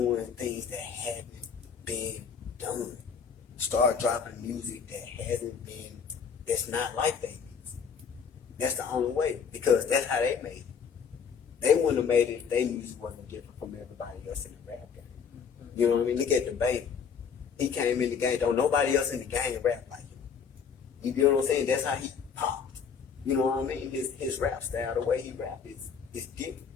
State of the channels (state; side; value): quieter; right; 6.5 dB